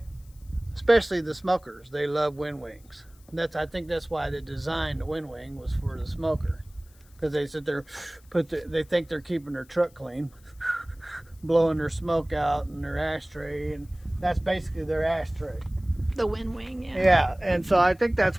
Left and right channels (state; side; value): noise; left; hiss, 29 dB below the sound